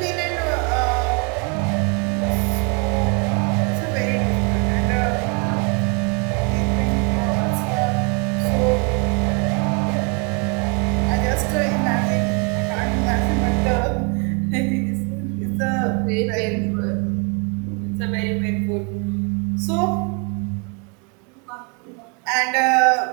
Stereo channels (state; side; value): quieter; left; 34.3 dB